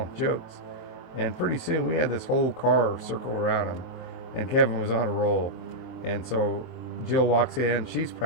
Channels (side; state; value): right; late; 23 ms